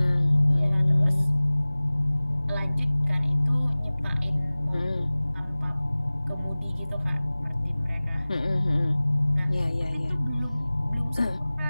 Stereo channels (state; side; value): inverted; both; correlation -0.99